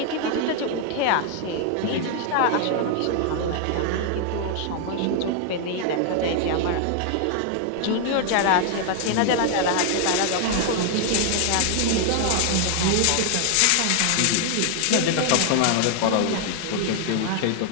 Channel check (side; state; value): both; different; correlation 0.00